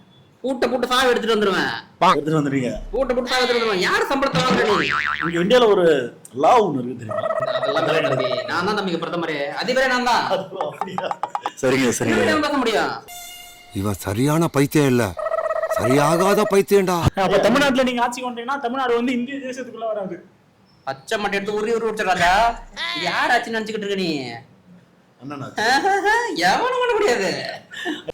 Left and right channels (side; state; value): both; identical; correlation 1.00